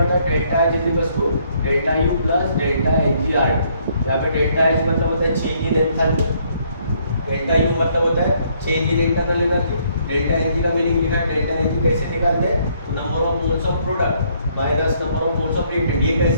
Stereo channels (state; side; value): inverted; both; correlation -0.68